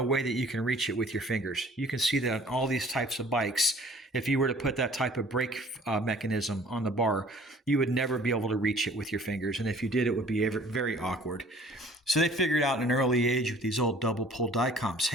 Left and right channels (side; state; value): both; normal; correlation 0.52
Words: way that you can reach it with your fingers. You can see that on all these types of bikes, if you were to put that type of brake mechanism on the bar, you would never be able to reach it with your fingers. And if you did, it would be very awkward. So they figured out in an early age with these old double pull die comps,